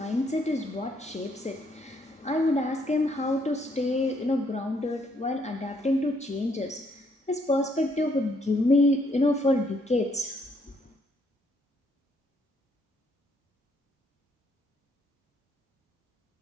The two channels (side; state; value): both; normal; correlation 0.70